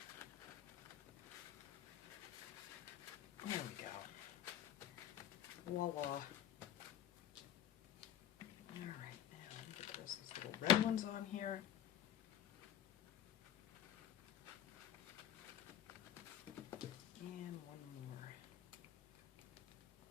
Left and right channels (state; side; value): quieter; right; 10.5 dB